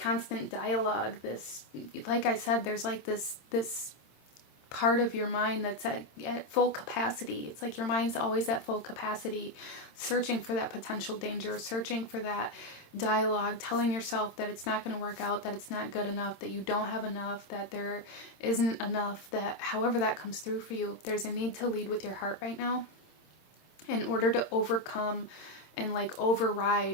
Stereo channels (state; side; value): late; right; 26 ms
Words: dialogue. This, like I said, there's like this part of your mind that's at full capacity. It's like your mind's always at full capacity, searching for that potential danger, searching for that dialogue, telling yourself that it's not going to work out, that it's not good enough, that you don't have enough, that there isn't enough, that however that comes through for you, there's a need to lead with your heart right now in order to overcome and like